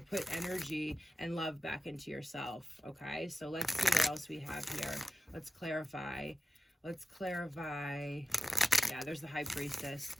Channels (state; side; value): normal; both; correlation 0.94